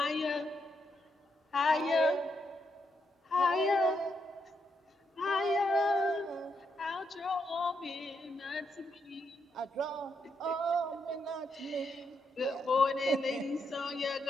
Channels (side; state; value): both; normal; correlation 0.80